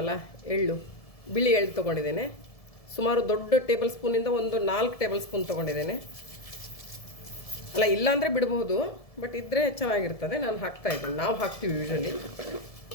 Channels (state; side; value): late; right; 1.7 ms